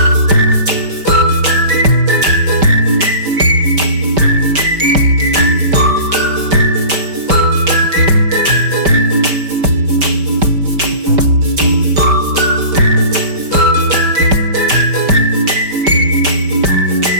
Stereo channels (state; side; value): late; left; 5.1 ms